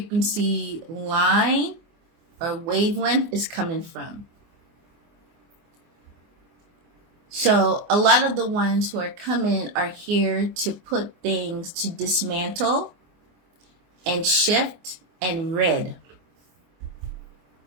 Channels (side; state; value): left; late; 24 ms